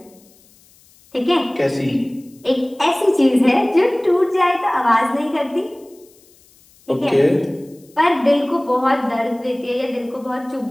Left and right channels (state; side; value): noise; left; hiss, 29 dB below the sound